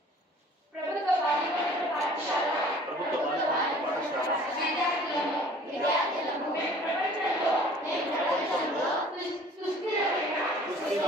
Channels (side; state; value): both; normal; correlation 0.50